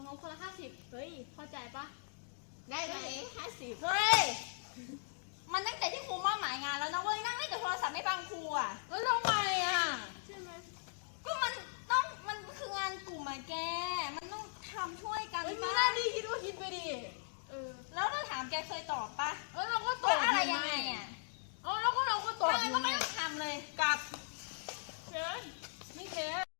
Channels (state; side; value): silent; right; digital silence